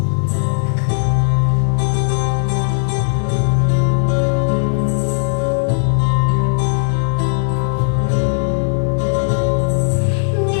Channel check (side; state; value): right; silent; digital silence